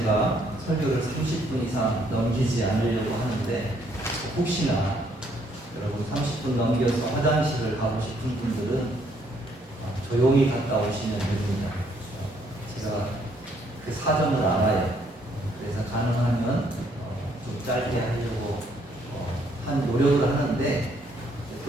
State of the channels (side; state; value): both; normal; correlation 0.68